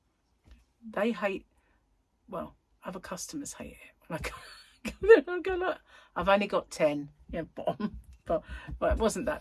they hate, well, other customers hate it. When I go like, I've only got 10. Yeah, bottom. But well, it wasn't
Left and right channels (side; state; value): both; identical; correlation 1.00